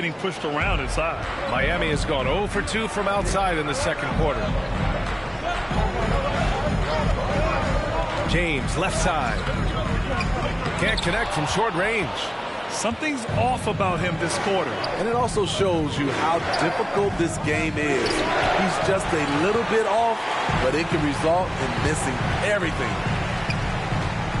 pushed around inside. Miami has gone 0 for 2 from outside in the second quarter. James, left side. Can't connect from short range. Something's off about him this quarter. And it also shows you how difficult this game is. He's just a little bit off, but it can result in missing everything.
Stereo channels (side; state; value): both; identical; correlation 1.00